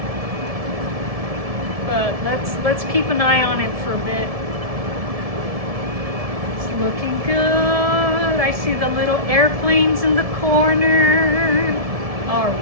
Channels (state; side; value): late; left; 1.7 ms